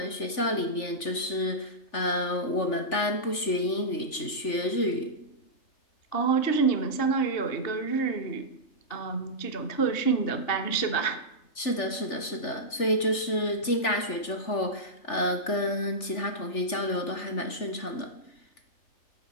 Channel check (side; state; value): right; late; 3.4 ms